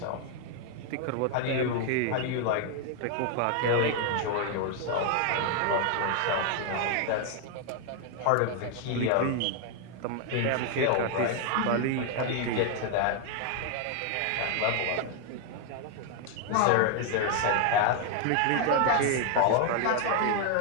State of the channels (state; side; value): different; both; correlation 0.00